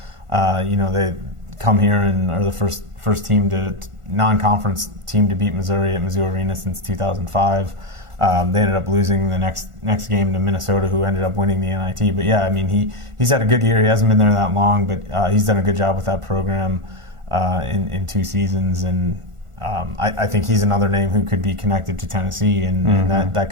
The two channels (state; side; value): late; left; 1.4 ms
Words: they come here and are the first team non-conference team to beat Missouri at Mizzou Arena since 2005. They ended up losing the next game to Minnesota, who ended up winning the NIT. But yeah, he's had a good year. He hasn't been there that long, but he's done a good job with that program in 2 seasons. And I think he's another name who could be connected to Tennessee, and that